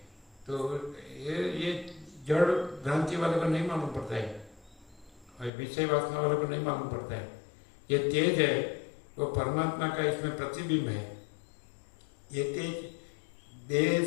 तो ये जड़ भ्रांति वाले को नहीं मालूम पड़ता है, और विषय वासना वाले को नहीं मालूम पड़ता है। ये तेज है वो परमात्मा का इसमें प्रतिबिंब है। ये तेज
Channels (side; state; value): right; drops out; at 5.5 s